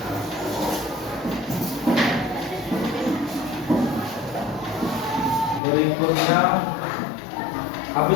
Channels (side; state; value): right; drops out; at 5.6 s